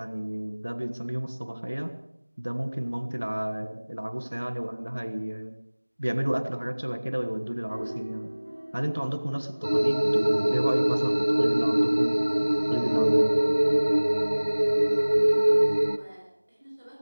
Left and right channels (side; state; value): both; inverted; correlation -1.00